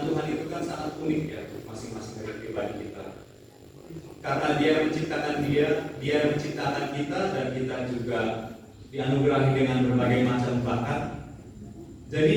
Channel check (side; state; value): both; identical; correlation 1.00